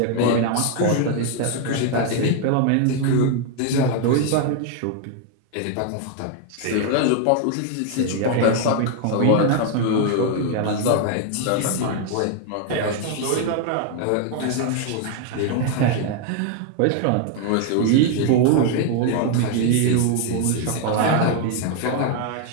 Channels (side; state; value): both; different; correlation 0.00